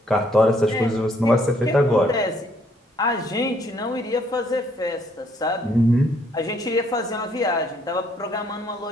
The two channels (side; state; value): both; normal; correlation 0.67